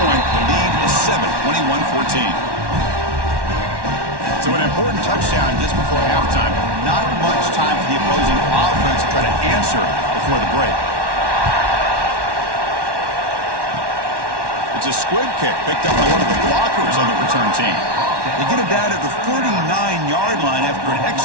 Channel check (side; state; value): left; late; 1.1 ms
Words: The lead is 7, 21-14. So an important touchdown just before halftime. Not much time for the opposing offense to try to answer before the break. It's a squib kick picked up by one of the blockers on the return team. They get it down at the 39-yard line after an